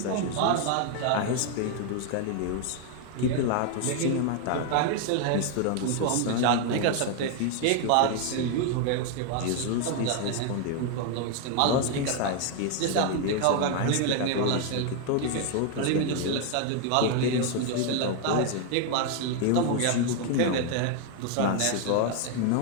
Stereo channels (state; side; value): different; both; correlation 0.01